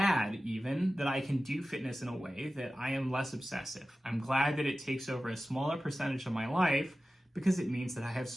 even that I can do fitness in a way that I am less obsessive. I'm glad that it takes over a smaller percentage of my life because it means that I have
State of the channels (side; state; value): both; normal; correlation 0.95